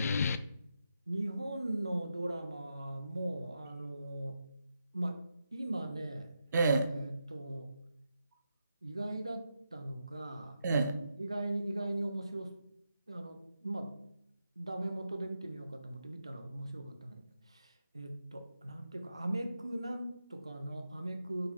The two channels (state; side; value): inverted; both; correlation -0.85